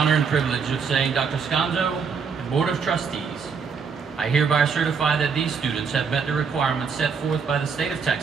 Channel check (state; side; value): quieter; left; 5.8 dB